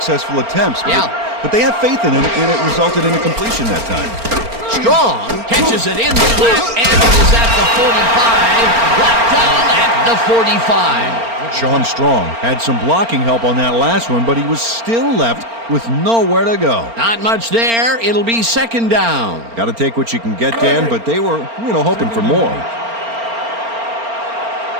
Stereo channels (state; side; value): late; left; 4.4 ms